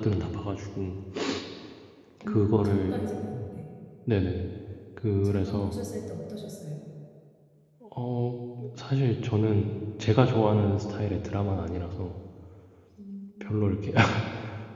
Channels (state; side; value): identical; both; correlation 1.00